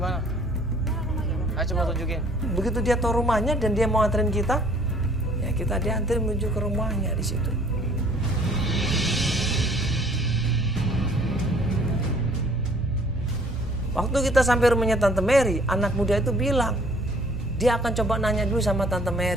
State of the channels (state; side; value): normal; both; correlation 0.57